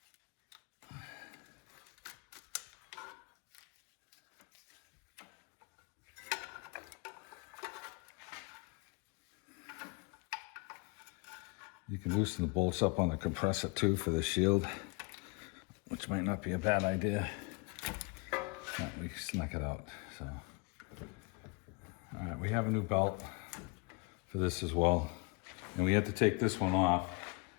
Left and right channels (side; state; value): right; quieter; 29.2 dB